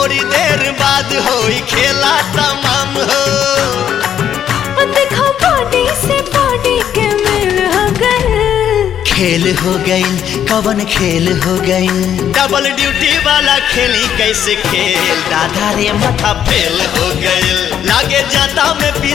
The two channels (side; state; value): right; quieter; 9.6 dB